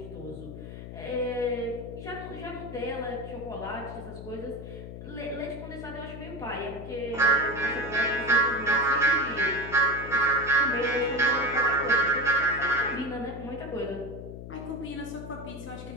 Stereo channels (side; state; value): left; noise; hum, 11 dB below the sound